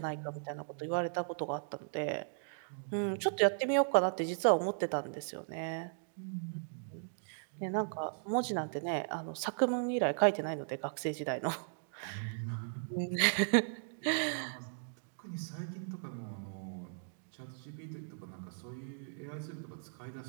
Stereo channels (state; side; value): silent; left; digital silence